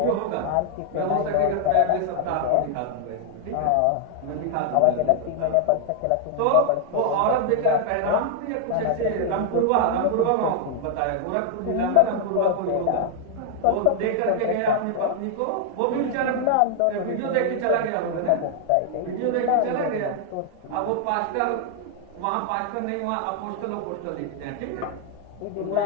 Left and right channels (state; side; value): different; both; correlation 0.00